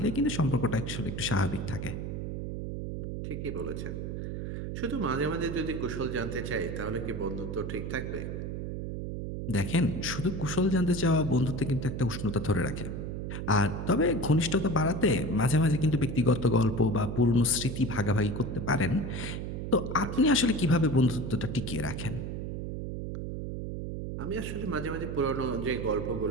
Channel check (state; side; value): noise; right; hum, 5 dB below the sound